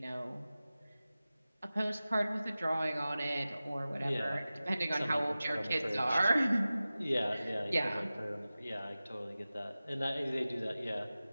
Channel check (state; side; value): inverted; both; correlation -0.96